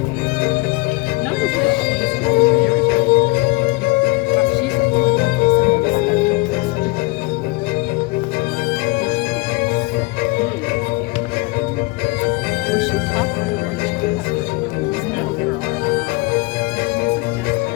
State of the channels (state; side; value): quieter; right; 23.3 dB